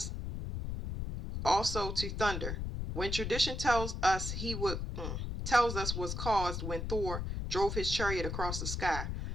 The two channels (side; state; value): left; noise; rumble, 4 dB below the sound